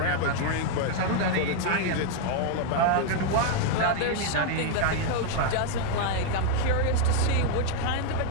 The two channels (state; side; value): different; both; correlation 0.00